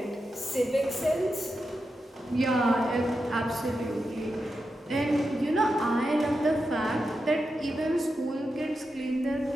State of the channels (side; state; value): both; normal; correlation 0.88